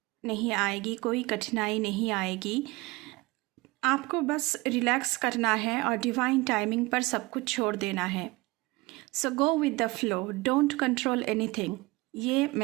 नहीं आएगी, कोई कठिनाई नहीं आएगी। आपको बस रिलैक्स करना है और डिवाइन टाइमिंग पर सब कुछ छोड़ देना है। So go with the flow, don't control anything. ये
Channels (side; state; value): left; quieter; 22.6 dB